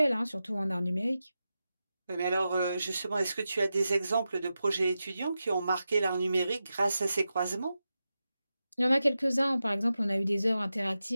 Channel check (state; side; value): inverted; both; correlation -0.91